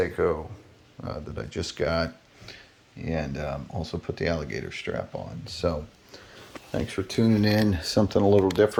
that I just got, and also put the alligator strap on. So thanks for tuning in. Something a little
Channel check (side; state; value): both; identical; correlation 1.00